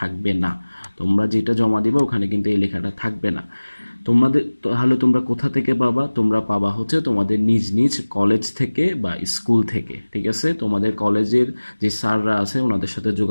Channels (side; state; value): both; inverted; correlation -1.00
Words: না। তোমরা যেটা জমা দিবে ওখানে কিন্তু এই লেখাটা থাকবে না। তোমাদের তাহলে তোমরা কোথা থেকে পাবা? তোমরা পাবা হচ্ছে তোমাদের নিজ নিজ কলেজ থেকে বা স্কুল থেকে। ঠিক আছে, তোমাদের কলেজের যে স্যাররা আছে ওনাদের সাথে